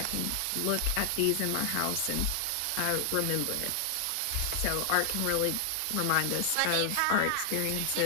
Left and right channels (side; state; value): both; different; correlation 0.00